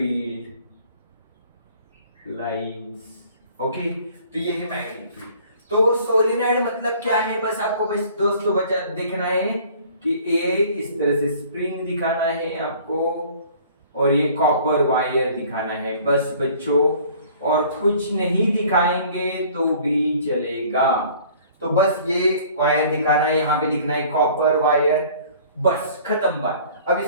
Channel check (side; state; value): both; inverted; correlation -0.52